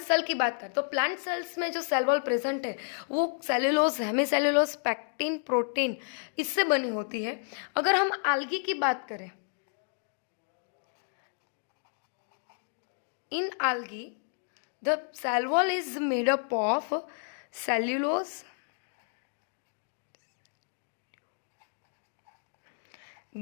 cell की बात करें तो plant cells में जो cell wall present है वो सेलुलोज, हेमीसेलुलोज, पैक्टिन, प्रोटीन इससे बनी होती है. अगर हम आल्गी की बात करें, in algae the cell wall is made up of cellulose,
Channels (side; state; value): right; silent; digital silence